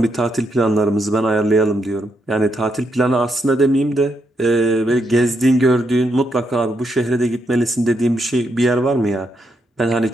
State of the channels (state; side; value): normal; both; correlation 0.79